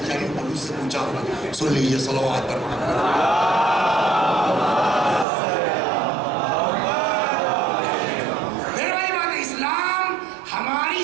پولیس سے پوچھا ہوگا۔ سن لیجیے، صلوات پر میرے بھائی بات، اسلام ہماری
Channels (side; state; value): left; drops out; at 5.2 s